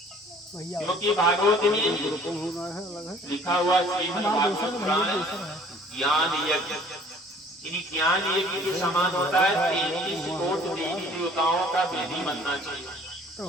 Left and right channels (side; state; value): both; normal; correlation 0.53